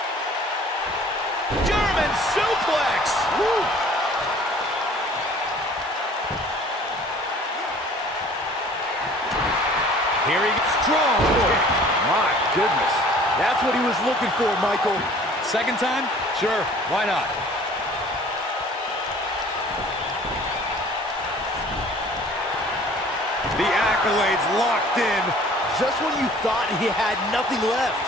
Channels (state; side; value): normal; both; correlation 0.51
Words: German suplex! Woo! Here he goes. Strong kick. My goodness. That's what he was looking for, Michael. Second time? Sure. Why not? The accolades locked in. Just when you thought he had nothing left.